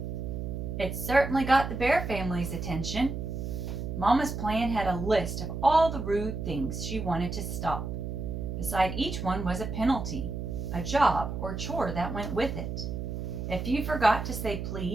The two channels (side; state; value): right; noise; hum, 5 dB below the sound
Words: It certainly got the Bear family's attention. Mama's plan had a list of all the rude things she wanted to stop. Beside each one was a penalty, a job or chore that went with it. If you forgot to say